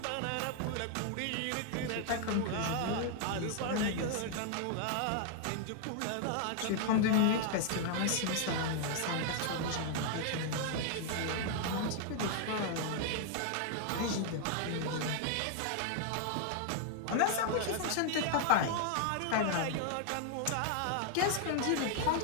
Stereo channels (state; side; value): different; both; correlation 0.00